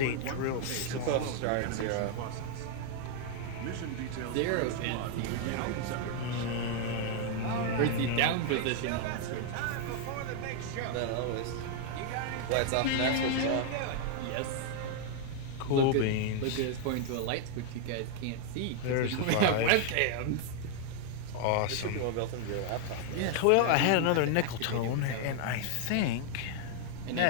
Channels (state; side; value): different; both; correlation 0.00